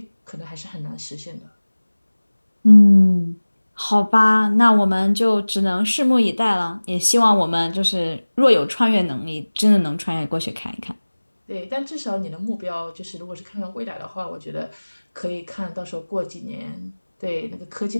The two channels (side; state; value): both; inverted; correlation -1.00